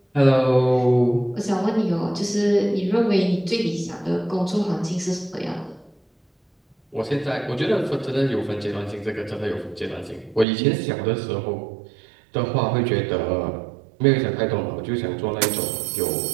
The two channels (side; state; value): left; drops out; at 10.5 s